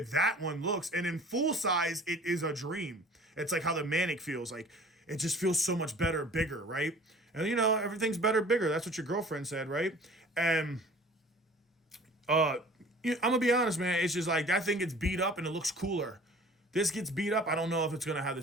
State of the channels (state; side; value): normal; both; correlation 0.47